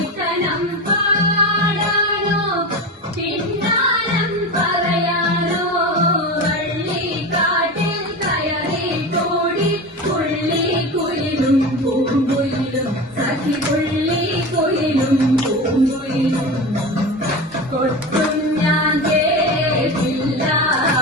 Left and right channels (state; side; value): normal; both; correlation 0.26